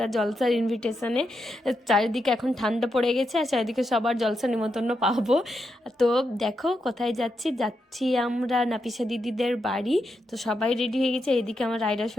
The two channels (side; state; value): both; normal; correlation 0.84